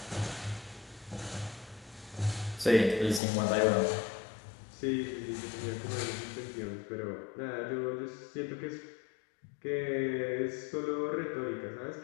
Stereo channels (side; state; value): right; drops out; at 3.2 s